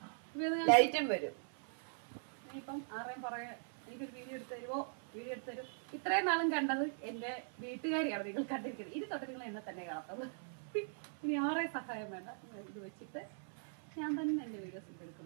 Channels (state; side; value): silent; left; 51 dB below the other